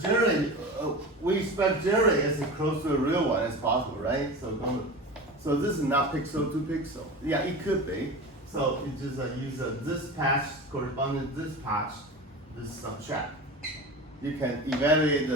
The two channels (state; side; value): normal; both; correlation 0.31